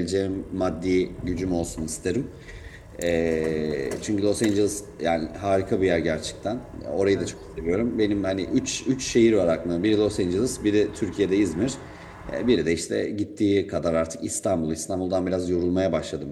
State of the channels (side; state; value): both; identical; correlation 1.00